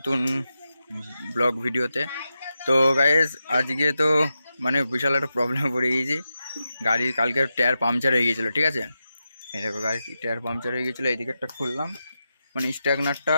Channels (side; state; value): both; inverted; correlation -0.90